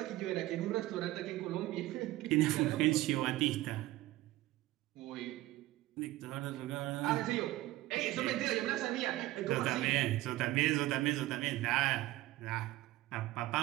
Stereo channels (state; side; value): quieter; left; 16.9 dB